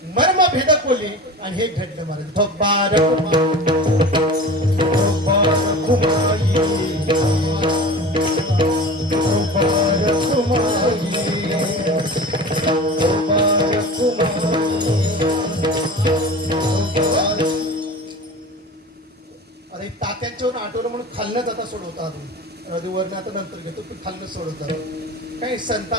मर्म भेदक बोलले आणि हे घडलं महाराज. अरे तात्यांच्यावर आठवलं म्हणून खालनं जाता सोडवता वरनं आता नंतर घेतो, पण खालनं सोडवतात. काही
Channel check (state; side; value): normal; both; correlation 0.35